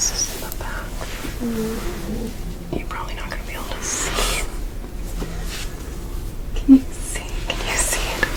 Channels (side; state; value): both; identical; correlation 1.00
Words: in the back. You're probably not going to be able to see it. Can you see? Can you see it?